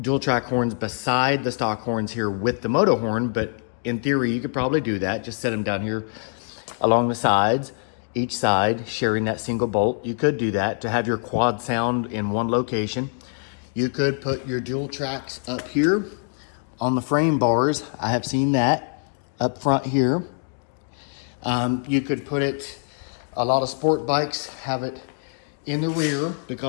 track horns beside the stock horns here with the Motohorn, but in theory you could probably do that. Just set them down here along the sides, each side sharing that single bolt. You could do that to have your quad sound in one location. You could put your dual tracks up here on the frame bars. I have seen that up front here. You could put it, a lot of sport bikes have it in the rear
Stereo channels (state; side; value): silent; right; 61 dB below the other